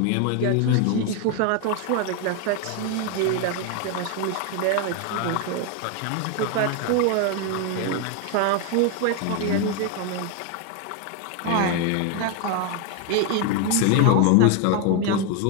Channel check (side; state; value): both; different; correlation 0.01